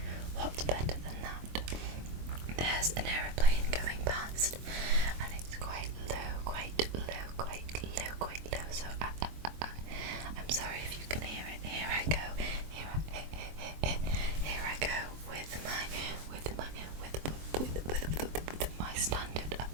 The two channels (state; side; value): late; left; 23 ms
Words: What's better than that? There's an aeroplane going past, and it's quite low, so I'm sorry if you can hear it. Here I go with my standard